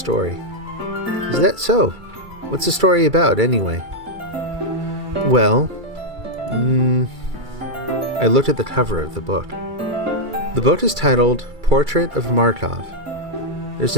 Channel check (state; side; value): late; left; 2.3 ms